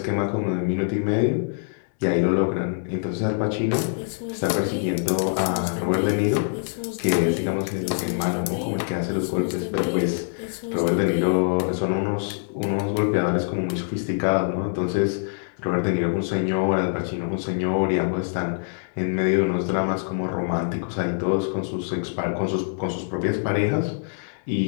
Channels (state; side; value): silent; right; digital silence